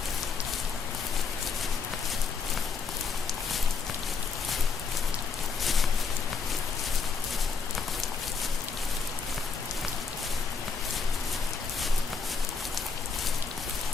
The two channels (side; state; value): right; quieter; 5.2 dB